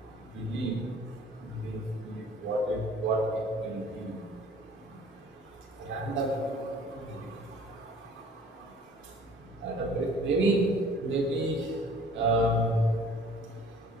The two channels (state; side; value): normal; both; correlation 0.51